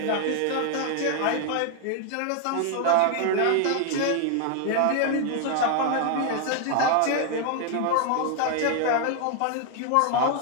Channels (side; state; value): both; different; correlation 0.00